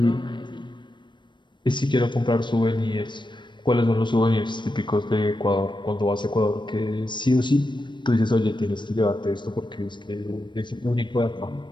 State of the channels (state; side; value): late; right; 0.22 ms